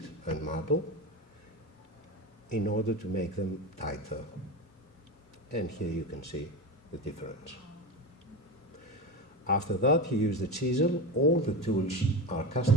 and marble, in order to make them tighter. And here you can see the difference. After that, he used the chisel. All the tools are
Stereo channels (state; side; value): normal; both; correlation 0.23